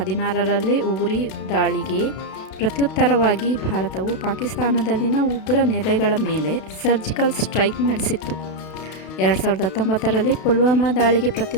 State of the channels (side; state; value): right; late; 32 ms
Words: ಉರಿ ದಾಳಿಗೆ ಪ್ರತ್ಯುತ್ತರವಾಗಿ ಭಾರತವು ಪಾಕಿಸ್ತಾನದಲ್ಲಿನ ಉಗ್ರ ನೆಲೆಗಳ ಮೇಲೆ ಸರ್ಜಿಕಲ್ ಸ್ಟ್ರೈಕ್ ನಡೆಸಿತ್ತು. 2019ರಲ್ಲಿ ಪುಲ್ವಾಮಾ ದಾಳಿಗೆ